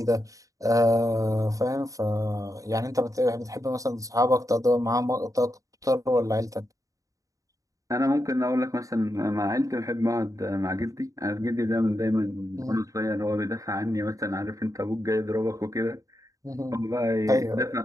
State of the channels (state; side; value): late; left; 0.16 ms